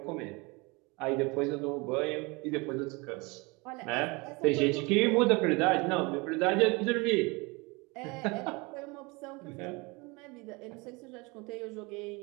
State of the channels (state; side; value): quieter; left; 26.7 dB